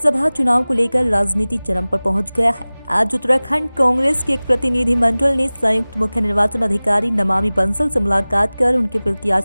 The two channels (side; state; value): both; inverted; correlation -0.99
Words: चुनाव को लेकर राजनीति चरम पर पहुंच गया है। आज उत्तराखंड कांग्रेस के एक प्रतिनिधिमंडल ने संयुक्त मुख्य निर्वाचन अधिकारी नमामि बंसल से मुलाकात कर उनके